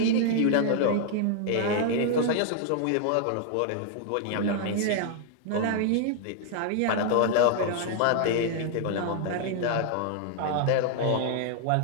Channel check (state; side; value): different; both; correlation 0.00